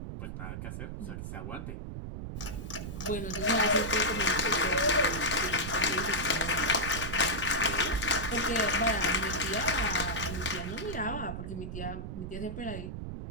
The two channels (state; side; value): noise; right; rumble, 7 dB below the sound